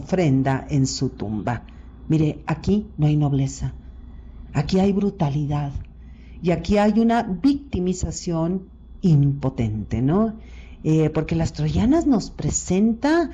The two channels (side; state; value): both; identical; correlation 1.00